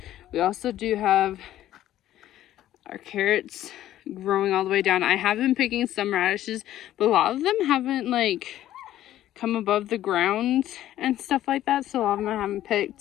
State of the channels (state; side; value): quieter; right; 13.1 dB